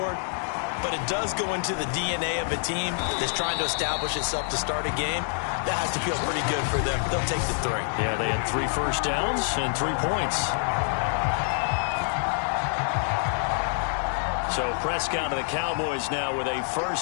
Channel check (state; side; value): silent; right; 60 dB below the other